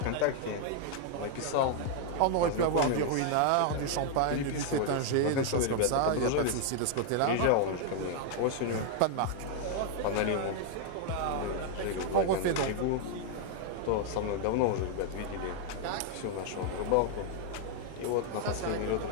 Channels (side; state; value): both; different; correlation 0.00